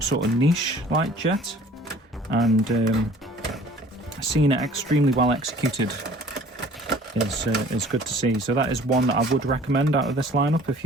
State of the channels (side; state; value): both; normal; correlation 0.51